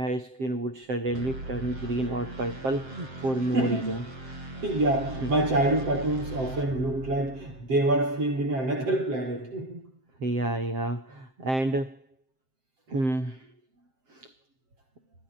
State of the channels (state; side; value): late; left; 7.6 ms